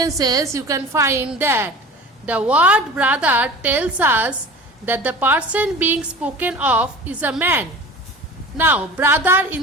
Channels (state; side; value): normal; both; correlation 0.38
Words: you can find that the word brother tells us that the person being spoken of is a man. Now, brother,